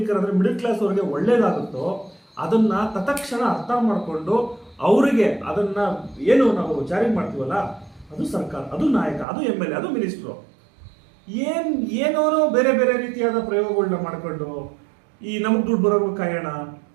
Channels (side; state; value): left; drops out; at 9.2 s